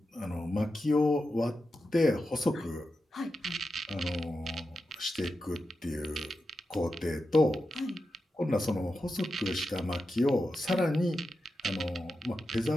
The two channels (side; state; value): both; normal; correlation 0.90